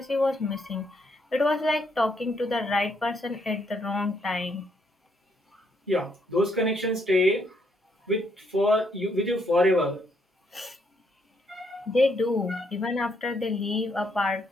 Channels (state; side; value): normal; both; correlation 0.73